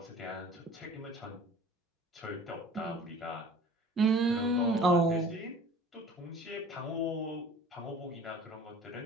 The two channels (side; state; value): both; normal; correlation 0.46